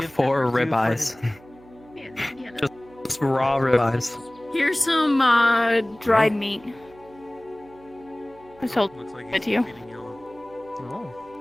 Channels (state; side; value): noise; right; hum, 24 dB below the sound